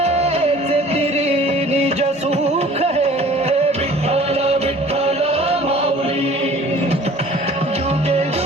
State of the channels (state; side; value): normal; both; correlation 0.49